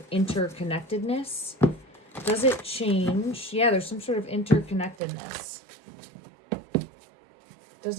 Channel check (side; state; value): left; drops out; at 5.0 s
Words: interconnectedness. Does it change? Yeah, there's some sort of interconnectedness. Does